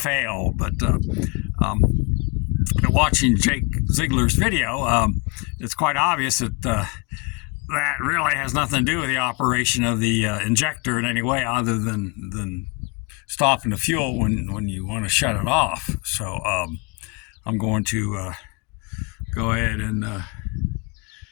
but watching Jake Ziegler's video, it's quite obvious that that really has nothing to do with the operation of the injector in any way, other than stopping the fuel when you want to shut it off. So I'm going to go ahead and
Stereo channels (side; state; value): right; quieter; 30.8 dB